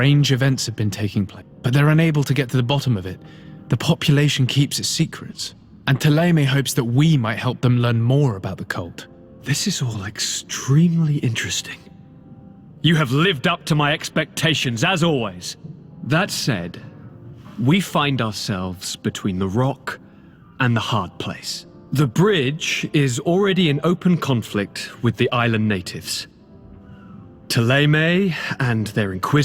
events have been taking place, but they're unable to get to the bottom of it. The population keeps its secrets, and Ptolemy hopes that we might help them learn more about the cult. This is all extremely interesting. You have lived up to my expectations, as always. That said, we find ourselves between the rock and the hard place. The bridge is already in open conflict with the island natives. Ptolemy and their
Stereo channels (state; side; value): identical; both; correlation 1.00